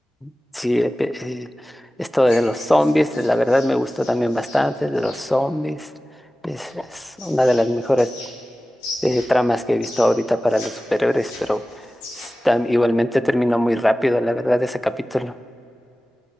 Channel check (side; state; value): both; normal; correlation 0.96